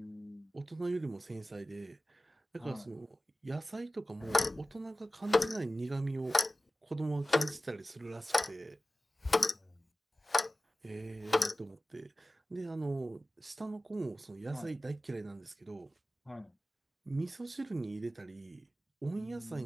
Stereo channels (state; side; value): normal; both; correlation 0.96